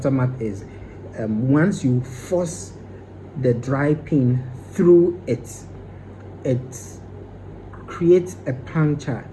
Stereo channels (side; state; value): both; identical; correlation 1.00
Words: is once you force the dry pin through it, it creates a puncture,